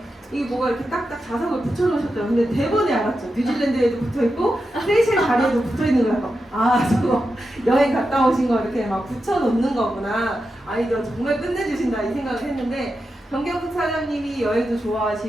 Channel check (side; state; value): both; normal; correlation 0.89